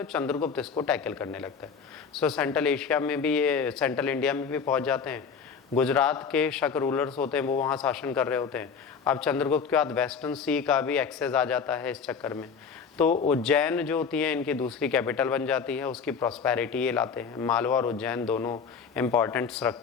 और चंद्रगुप्त इसको टैकल करने लगता है। सो सेंट्रल एशिया में भी ये, सेंट्रल इंडिया में भी पहुंच जाते हैं। गुजरात के शक रूलर्स होते हैं वो वहाँ शासन कर रहे होते हैं। अब चंद्रगुप्त के बाद वेस्टर्न सी का भी एक्सेस आ जाता है इस चक्कर में। तो उज्जैन जो होती है इनकी दूसरी कैपिटल बन जाती है, उसकी प्रॉस्पेरिटी ये लाते हैं। मालवा और उज्जैन दोनों इंपॉर्टेंट्स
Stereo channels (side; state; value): right; quieter; 6.1 dB